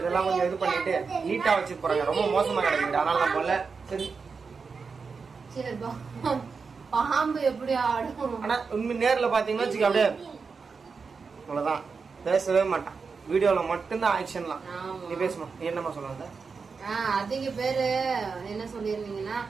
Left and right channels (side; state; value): left; quieter; 5.1 dB